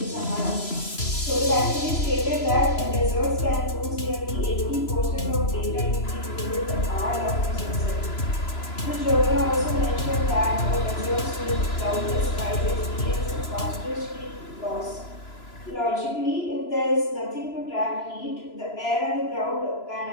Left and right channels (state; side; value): late; right; 3.0 ms